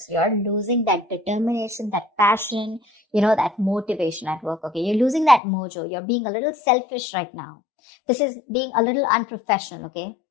You're losing that determination, that passion, that motivation at work, okay? You're losing that mojo. You're being a little selfish right now. This is being a little unprofessional, okay?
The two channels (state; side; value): drops out; right; at 5.4 s